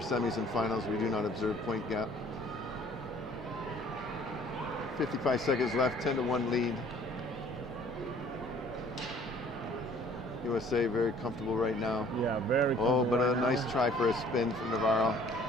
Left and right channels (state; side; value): normal; both; correlation 0.54